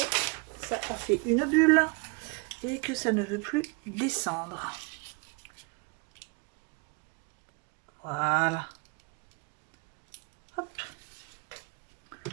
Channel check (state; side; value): quieter; left; 31.0 dB